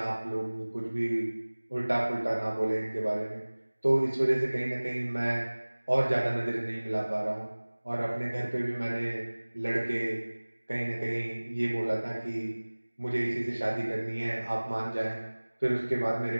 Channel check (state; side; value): inverted; both; correlation -1.00